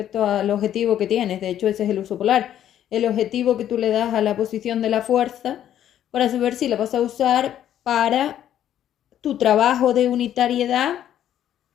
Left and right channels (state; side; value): quieter; right; 11.0 dB